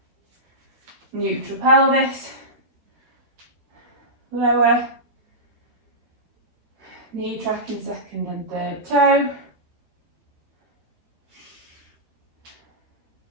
Neutral pelvis, lower, knee tracking second and third toe.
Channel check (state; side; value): late; left; 13 ms